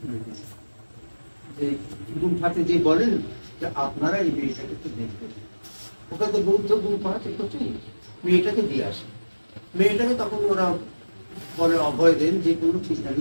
দিলেন। যে গুম্ফাতে যে বলেন যে আপনারা এই মেয়েটাকে একটু দেখবেন, ওখানে তো বৌদ্ধ গুম্ফা আছে, প্রচুর, মেয়েটাকে দিয়ে আসে। মেয়েটাকে তখন ওরা বলে, অভয় দেন যে কোনো চিন্তা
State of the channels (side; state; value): both; inverted; correlation -1.00